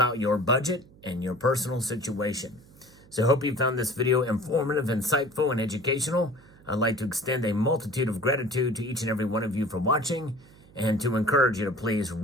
your budget and your personal situation. So I hope you found this video informative, insightful, and educational. I'd like to extend a multitude of gratitude to each and every one of you for watching, and to encourage you to please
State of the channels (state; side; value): noise; right; hum, 25 dB below the sound